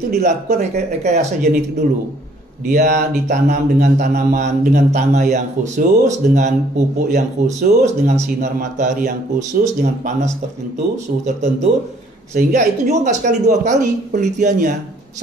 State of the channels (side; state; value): both; normal; correlation 0.61